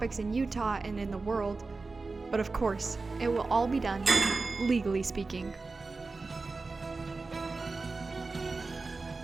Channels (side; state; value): left; quieter; 3.8 dB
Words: in Utah and in the world, but of course, it will all be done legally speaking.